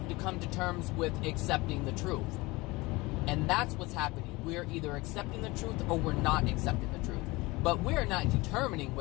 to come to terms with accepting the truth. And that's what's happening. We're either accepting the truth or we're not accepting the truth. But we're not determining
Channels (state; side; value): quieter; right; 22.4 dB